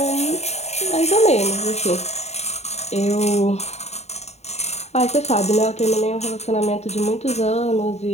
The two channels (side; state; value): right; late; 0.32 ms